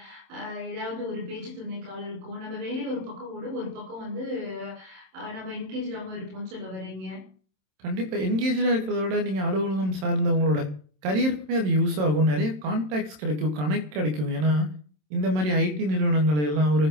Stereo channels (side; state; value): left; late; 27 ms